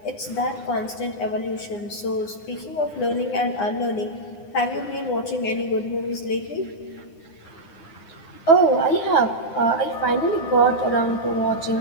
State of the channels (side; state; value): right; late; 9.8 ms